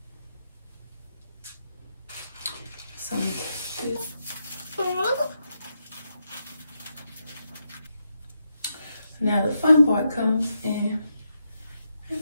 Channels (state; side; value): inverted; both; correlation -0.83